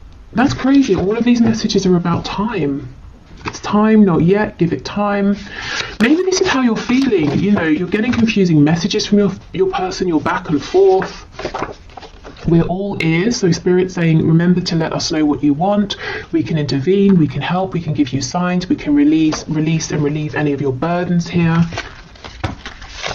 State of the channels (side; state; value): both; identical; correlation 1.00